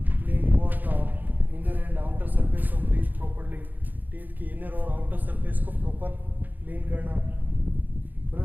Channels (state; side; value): late; left; 0.086 ms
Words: Clean both the inner and outer surface of teeth properly, teeth की इनर और आउटर सरफेस को प्रॉपर क्लीन करना।